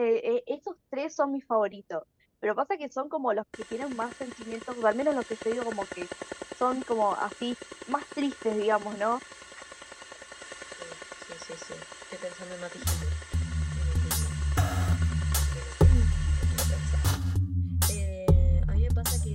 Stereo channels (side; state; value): both; identical; correlation 1.00